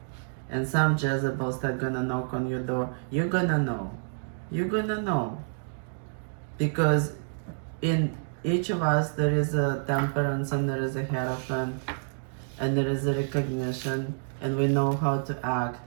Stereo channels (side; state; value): left; silent; digital silence